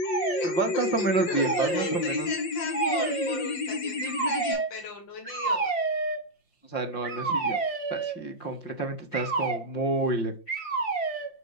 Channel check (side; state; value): right; late; 5.7 ms